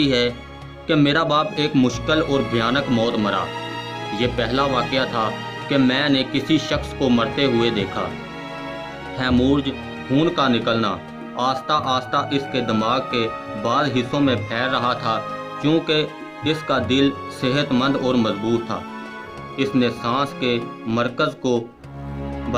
ہے کہ میرا باپ ایک مشکل اور بھیانک موت مرا۔ یہ پہلا واقعہ تھا کہ میں نے کسی شخص کو مرتے ہوئے دیکھا۔ ہیمورج، خون کا نکلنا، آہستہ آہستہ اس کے دماغ کے بعض حصوں میں پھیل رہا تھا، چونکہ اس کا دل صحت مند اور مضبوط تھا۔ اس نے سانس کے مرکز کو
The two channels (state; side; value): identical; both; correlation 1.00